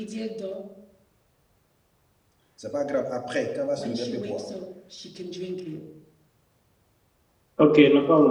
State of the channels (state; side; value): identical; both; correlation 1.00